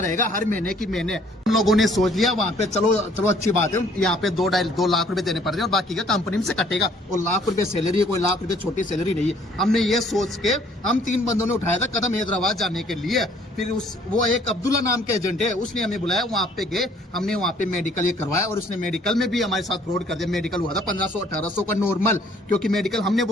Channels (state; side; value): normal; both; correlation 0.60